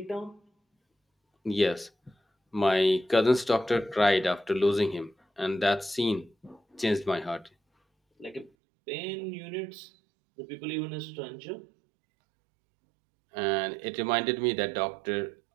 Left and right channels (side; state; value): left; drops out; at 8.5 s